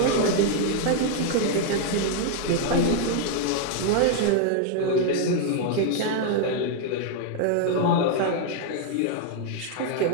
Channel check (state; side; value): different; both; correlation 0.00